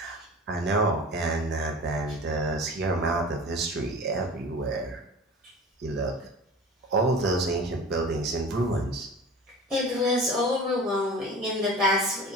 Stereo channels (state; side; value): normal; both; correlation 0.38